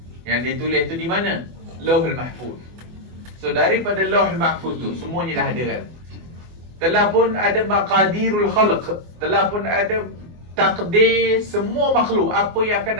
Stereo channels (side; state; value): left; late; 24 ms